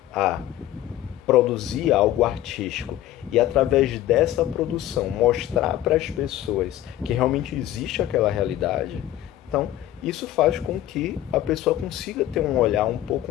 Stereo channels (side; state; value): right; quieter; 13.5 dB